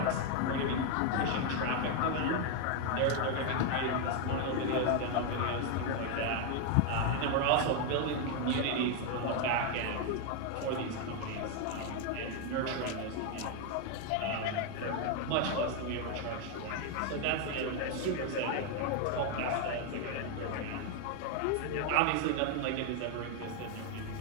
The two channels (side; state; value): both; different; correlation 0.01